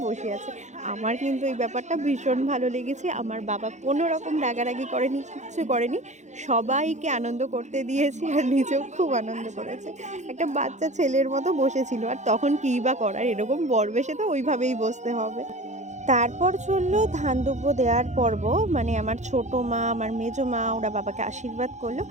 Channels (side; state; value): left; late; 0.34 ms